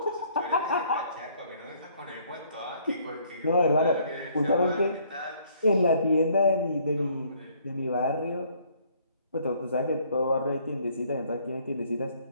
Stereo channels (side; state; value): both; inverted; correlation -0.64